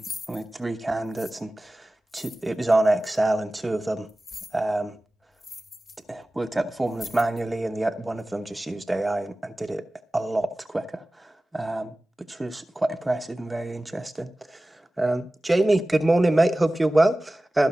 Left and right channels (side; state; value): both; normal; correlation 0.97